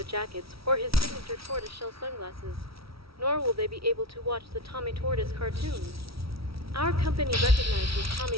jackets or his signature tortoiseshell sunglasses, nor will they be able to watch the Tommy Tortoise cartoons. Our company recognizes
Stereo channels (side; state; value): left; late; 0.75 ms